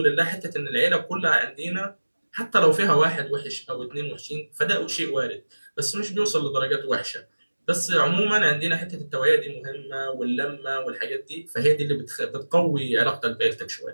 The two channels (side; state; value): both; inverted; correlation -1.00